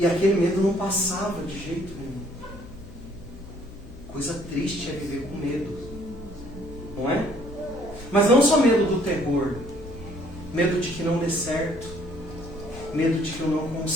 aquele medo não passava de jeito nenhum. Coisa triste é viver com medo. Não é? Mas não só medo do terror. Medo de que não dê certo. Medo de que eu não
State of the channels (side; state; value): left; noise; hum, 16 dB below the sound